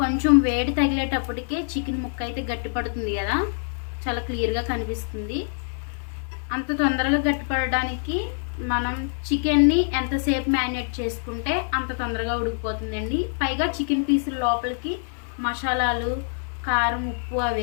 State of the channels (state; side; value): silent; right; 56 dB below the other